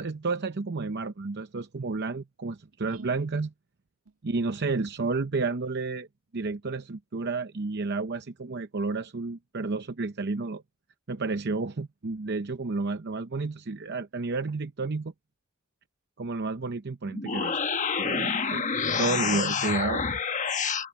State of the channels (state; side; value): normal; both; correlation 0.19